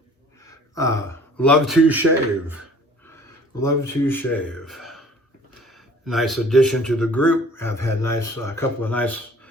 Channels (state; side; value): normal; both; correlation 0.51